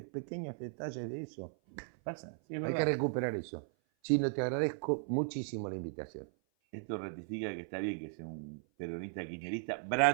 detalles de eso. Pasa, sí, es verdad. Hay que recuperar eso. Chino, te agradezco muchísimo la invitación. Esto ratifica que está bien que sea un peronista kirchnerista,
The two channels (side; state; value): left; silent; 53 dB below the other